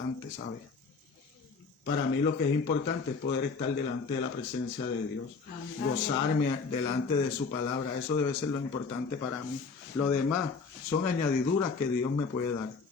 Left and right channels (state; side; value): quieter; right; 4.7 dB